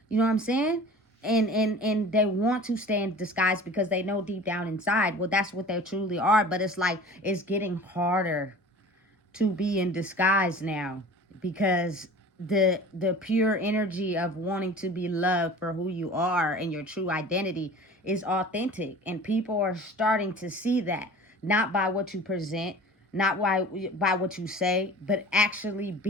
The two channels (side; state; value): both; normal; correlation 0.41